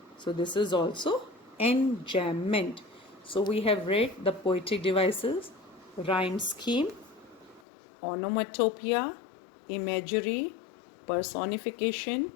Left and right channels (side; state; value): right; drops out; at 7.6 s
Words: So this is also enjambment. So we have read the poetic devices, rhyme scheme, onomatopoeia, imagery, personification,